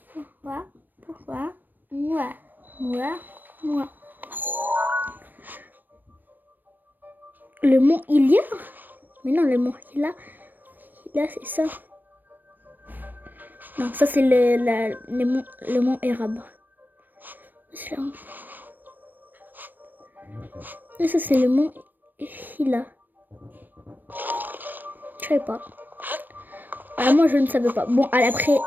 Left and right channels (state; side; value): late; left; 0.090 ms